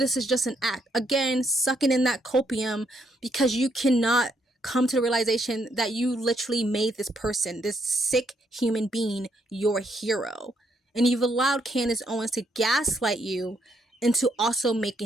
is just an act. Again, sucking in that copium because you cannot come to the realization that you literally made this person, this sick human being, your hero. And you've allowed Candace Owens to gaslight you into also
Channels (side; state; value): both; normal; correlation 0.74